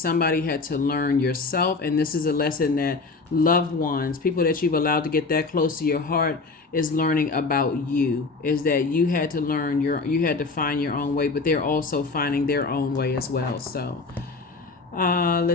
had to learn yourself. And this is a lesson that loved ones, people that you've allowed to get that close to your heart, is learning about you. Is that you had to learn you had to find your own way, but they're also finding their own way as well. So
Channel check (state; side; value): quieter; right; 4.0 dB